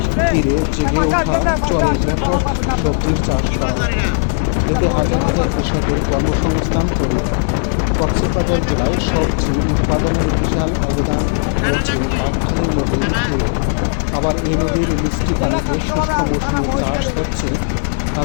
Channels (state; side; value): silent; right; 68 dB below the other